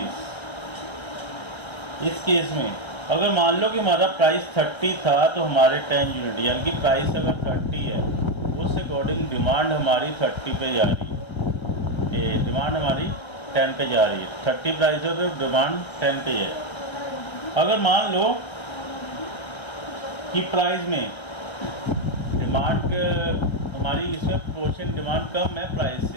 इस केस में अगर मान लो कि हमारा प्राइस 30 था तो हमारे 10 यूनिट, यानी कि प्राइस अगर 30 है उस अकॉर्डिंग डिमांड हमारी 30 पे जा रही है, डिमांड हमारी 10 पे जा रही है। 30 प्राइस हो तो डिमांड 10 पे है। अगर मान लो कि प्राइस में डिमांड हमारी इसमें प्रोपोर्शन डिमांड कम है प्राइस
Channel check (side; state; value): right; late; 1.3 ms